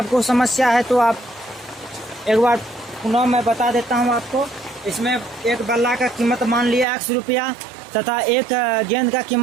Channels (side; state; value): left; drops out; at 6.9 s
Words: समस्या है तो आप एक बार पुनः मैं बता देता हूँ आपको। इसमें एक बल्ला का कीमत मान लिया x रुपया तथा एक गेंद का